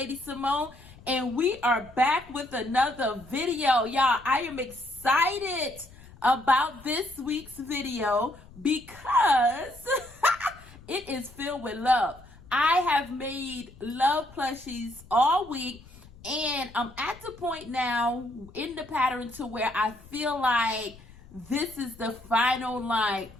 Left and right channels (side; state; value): left; noise; rumble, 21 dB below the sound